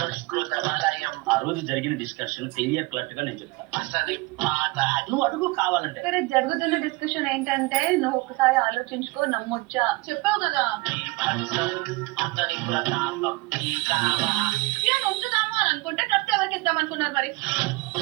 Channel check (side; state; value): left; quieter; 23.5 dB